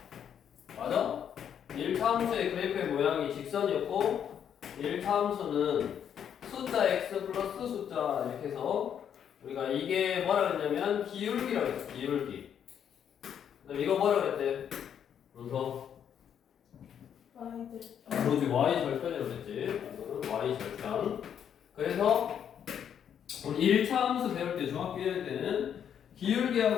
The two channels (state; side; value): quieter; right; 8.7 dB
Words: 맞아? 1차함수의 그래프의 모양이 직선이었고 1차함수는 숫자 x 플러스 숫자 이렇게 해서 우리가 이게 뭐라 그랬냐면 기울기라고 했어. 기울기. 그다음 이거 뭐라 그랬대? 그래서 그렇지 y 절편이라고 했지. y 절편. 그래서 우리 1차 함수 배울 때 중학교 1학 때는